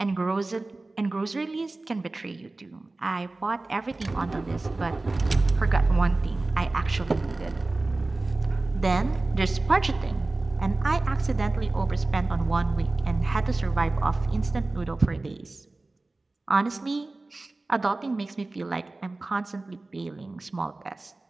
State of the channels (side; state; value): left; quieter; 3.1 dB